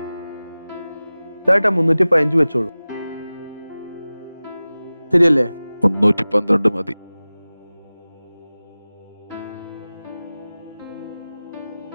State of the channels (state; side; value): inverted; both; correlation -0.98